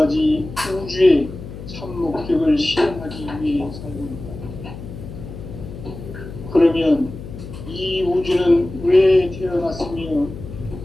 우주의 참 목적을 실현하기 위해 살고 있다. 그러면 이 우주는 왜 태어났으며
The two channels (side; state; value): left; noise; hum, 12 dB below the sound